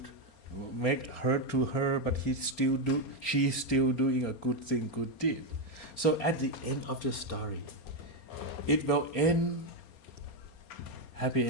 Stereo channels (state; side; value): late; right; 4.3 ms